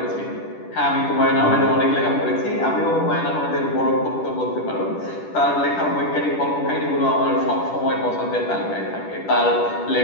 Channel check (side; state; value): right; late; 10 ms